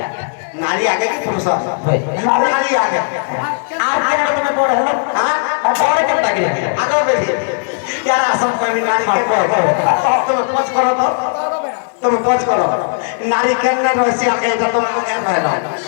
নারী আগে কি পুরুষ হয় নারী আগে আর কেন তুমি বড় হলো হ্যাঁ বড় কেন লাগে আগে বেশি यार सब कोई नारी के तुम पच करो तो तुम पच करो नारी के न रसी आगे तो तुम को क्या कहलो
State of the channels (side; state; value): right; silent; digital silence